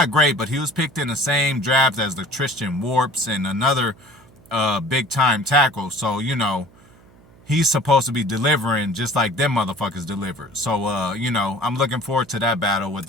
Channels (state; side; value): noise; right; hum, 26 dB below the sound